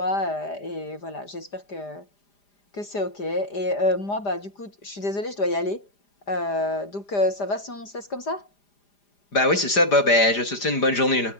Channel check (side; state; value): right; late; 4.9 ms